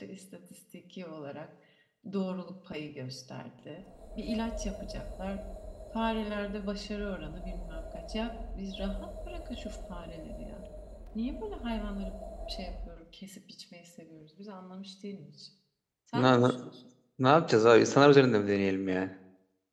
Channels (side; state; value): both; identical; correlation 1.00